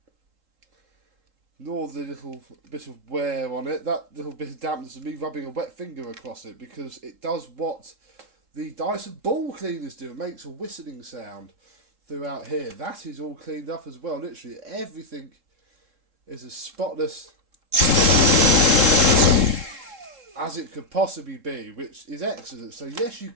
Nor the little bit of wear on it. That little bit of dampness of me rubbing a wet finger across it, because it does what the Dyson ball cleaners do. It makes a whistling sound throughout here. That is all cleaned up as well. Literally everything is as spotless as it could possibly be, which is excellent. So yes, you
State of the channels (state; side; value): late; left; 3.7 ms